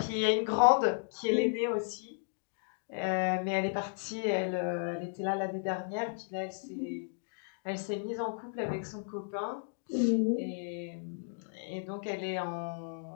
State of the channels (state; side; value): silent; right; digital silence